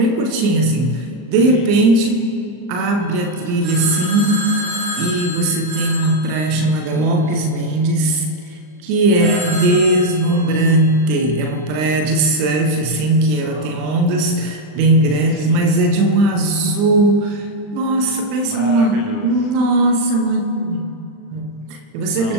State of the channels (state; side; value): late; left; 39 ms